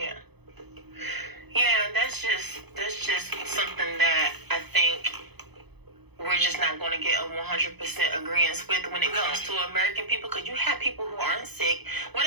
that's just something that I think we're just not going to get a 100% agreement with when it comes to American people, because you have people who aren't sick. What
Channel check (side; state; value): left; late; 0.98 ms